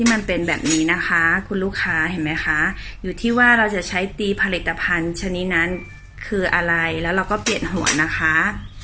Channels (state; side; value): identical; both; correlation 1.00